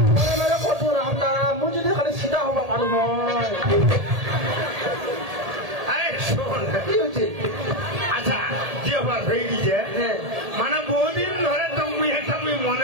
কত রামদা মুই যদি খালি সিধা হবা পারো নয় আরে শোন কি হচ্ছে আচ্ছা যে আবার হয়ে গেছে হ্যাঁ মানে বহুদিন ধরে তুমি একটা তুমি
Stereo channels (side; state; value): left; late; 1.8 ms